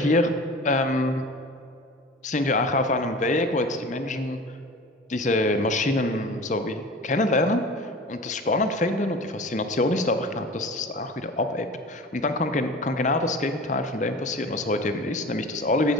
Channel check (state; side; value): normal; both; correlation 0.37